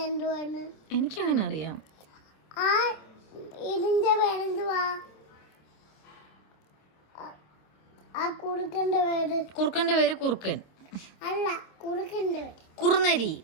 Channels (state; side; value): late; right; 26 ms